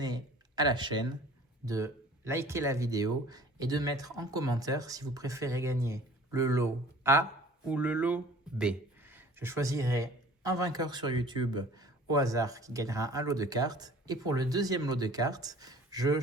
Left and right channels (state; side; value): normal; both; correlation 0.48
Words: à la chaîne, de liker la vidéo et de mettre en commentaire si vous préférez gagner le lot A ou le lot B. Je choisirai un vainqueur sur YouTube au hasard qui gagnera un lot de cartes. Et pour le deuxième lot de cartes, je